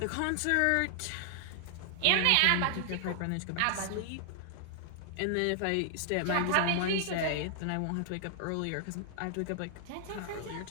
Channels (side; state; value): both; different; correlation 0.00